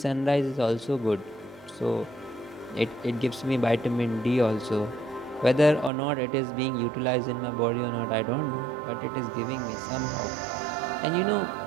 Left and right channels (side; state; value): left; drops out; at 5.9 s